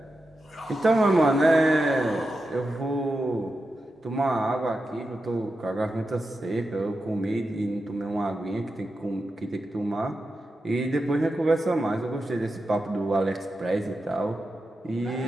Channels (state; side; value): normal; both; correlation 0.90